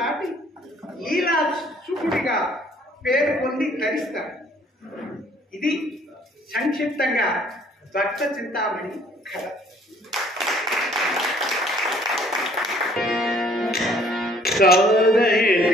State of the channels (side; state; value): both; normal; correlation 0.59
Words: లీలా చూపుడిగా పేరు పొంది తరిస్తాడు. ఇది సంక్షిప్తంగా భక్త చింతామణి కథ.